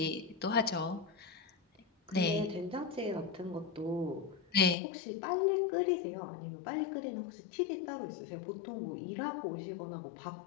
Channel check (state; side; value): drops out; right; at 4.8 s